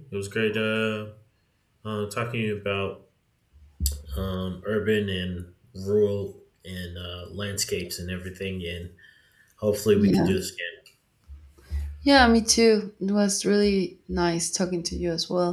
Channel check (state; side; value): identical; both; correlation 1.00